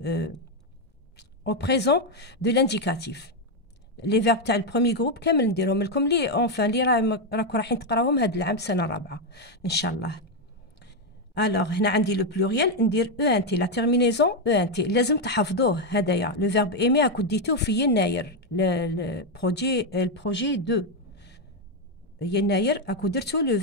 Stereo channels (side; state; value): both; normal; correlation 0.04